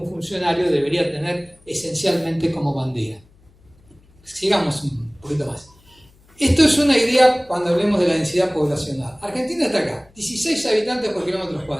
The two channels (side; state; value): left; noise; hum, 30 dB below the sound